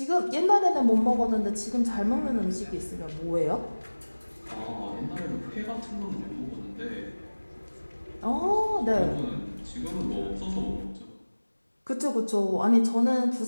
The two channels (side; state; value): both; inverted; correlation -1.00